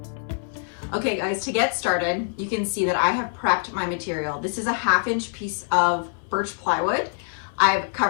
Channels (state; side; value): silent; right; 60 dB below the other